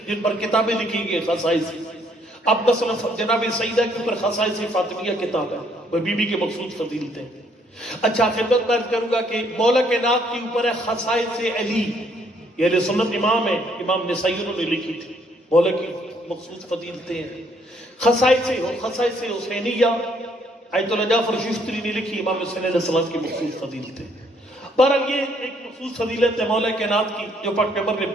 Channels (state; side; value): normal; both; correlation 0.67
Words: جن پر کتابیں لکھی گئی خصائص. اب مثلا جناب سیدہ کے اوپر خصائص فاطمیہ کتاب ہے، وہ بی بی کے مخصوص فضیلتیں. اچھا خدمت میں عرض کروں گا کہ مولا کائنات کے اوپر ہے خصائص علی. یہ اہل سنت امام ہے، امام نسائی انہوں نے لکھی تھی. مولا کی مخصوص فضیلتیں ہیں. خصائص حسینیہ آیت اللہ جعفر شفتری نے لکھی، امام حسین علیہ السلام کی مخصوص فضیلتیں. بہرحال یہ ایک مخصوص فضیلت ہے مولا کائنات کی جو پاک پیغمبر نے